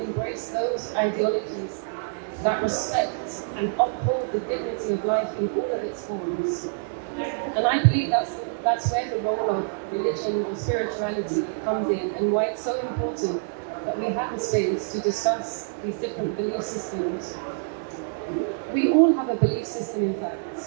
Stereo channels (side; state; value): left; silent; 56 dB below the other